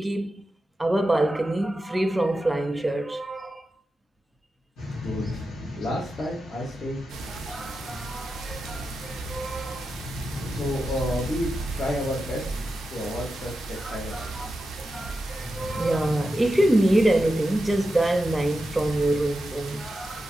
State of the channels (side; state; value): both; normal; correlation 0.90